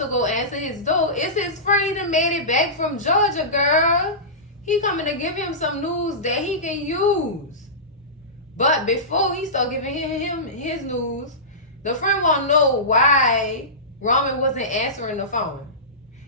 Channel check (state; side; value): normal; both; correlation -0.20